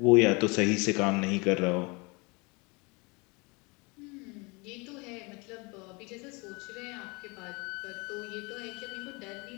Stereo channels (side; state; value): right; quieter; 28.4 dB